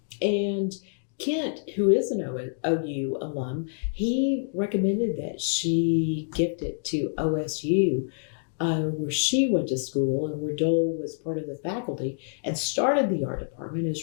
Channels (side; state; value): right; silent; digital silence